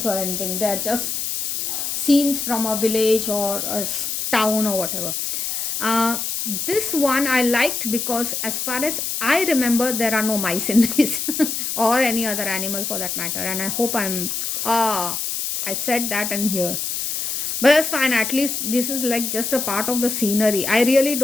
or anything. They are just scenes from a village or a town or whatever. This one I liked because, as far as I remember, there are no mice in this or any other animal for that matter. And I hope I said that in here. But that's fine. At least this is like just a part of the scenery. I really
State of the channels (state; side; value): noise; left; hiss, 2 dB below the sound